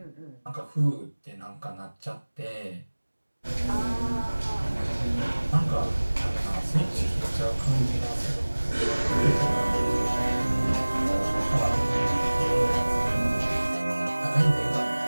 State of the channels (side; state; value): both; inverted; correlation -1.00